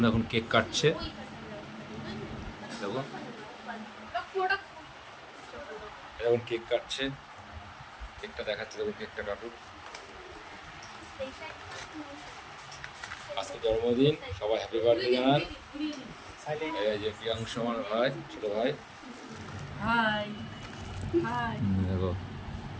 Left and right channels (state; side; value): identical; both; correlation 1.00